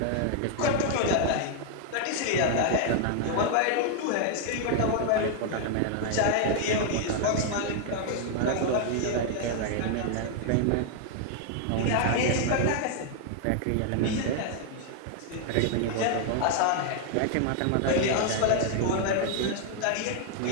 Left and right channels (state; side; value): different; both; correlation 0.00